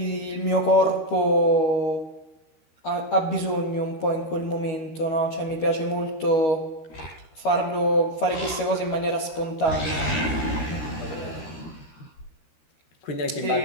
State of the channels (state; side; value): late; right; 13 ms